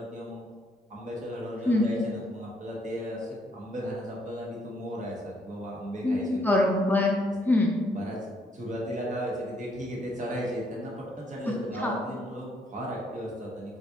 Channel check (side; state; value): both; normal; correlation 0.70